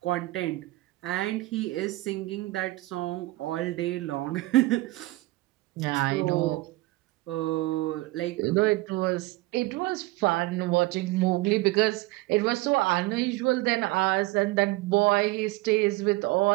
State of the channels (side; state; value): left; quieter; 20.1 dB